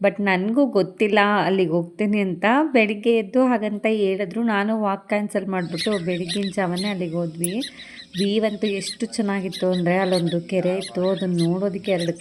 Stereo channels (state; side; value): identical; both; correlation 1.00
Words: ಬಟ್ ನನಗೂ ಗೊತ್ತಿಲ್ಲ ಅಲ್ಲಿಗೆ ಹೋಗ್ತೀನಿ ಅಂತ. ಬೆಳಿಗ್ಗೆ ಎದ್ದು ಹಾಗಂತ ಹೇಳಿದ್ರು. ನಾನು ವಾಕ್ ಕ್ಯಾನ್ಸಲ್ ಮಾಡಿಬಿಟ್ಟು ಬೆಳಗ್ಗಿನ ಜಾವನೇ ಅಲ್ಲಿಗೆ ಹೋದ್ವಿ. ಅಂತೂ ಎಷ್ಟು ಚೆನ್ನಾಗಿತ್ತು ಅಂದರೆ, ಅಲ್ಲೊಂದು ಕೆರೆ ಇತ್ತು, ಅದನ್ನು ನೋಡೋದಕ್ಕೆ ಎರಡು